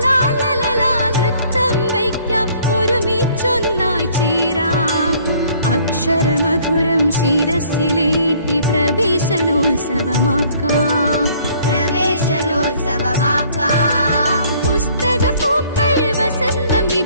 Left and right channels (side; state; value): both; inverted; correlation -0.59